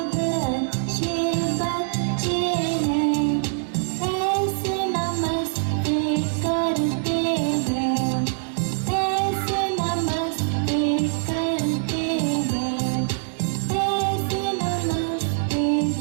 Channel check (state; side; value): silent; left; digital silence